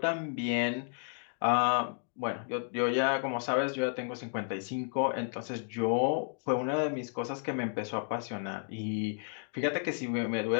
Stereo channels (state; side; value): silent; right; 56 dB below the other